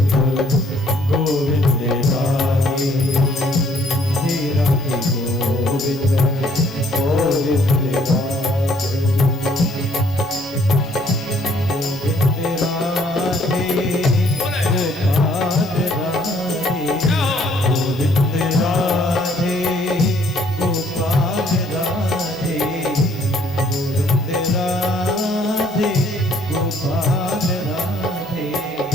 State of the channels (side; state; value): both; normal; correlation 0.63